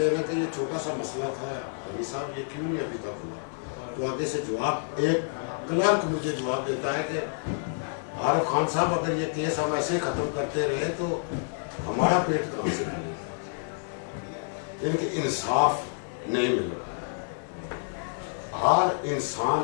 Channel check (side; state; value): right; silent; digital silence